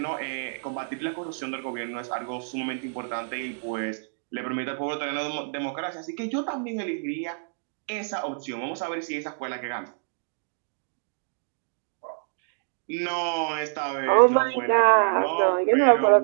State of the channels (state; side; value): silent; left; digital silence